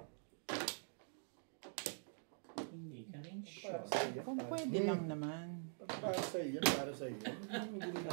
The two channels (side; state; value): left; silent; digital silence